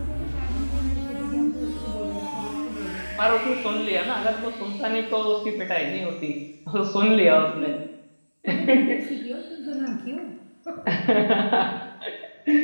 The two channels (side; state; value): both; inverted; correlation -1.00